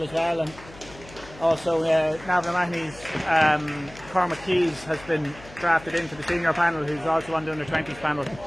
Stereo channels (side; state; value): left; noise; hum, 19 dB below the sound